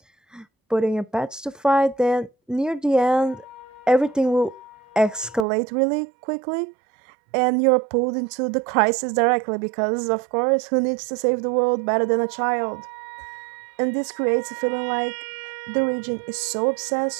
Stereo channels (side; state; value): left; drops out; at 5.5 s